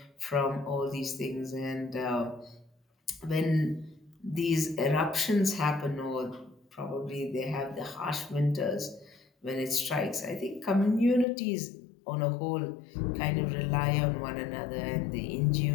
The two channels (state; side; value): drops out; right; at 11.2 s